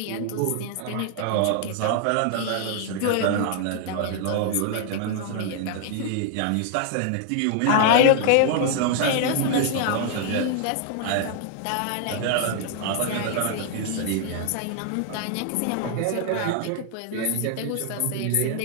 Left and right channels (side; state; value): both; different; correlation 0.00